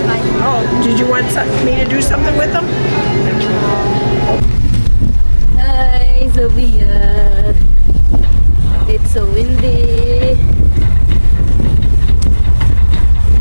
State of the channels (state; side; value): inverted; both; correlation -1.00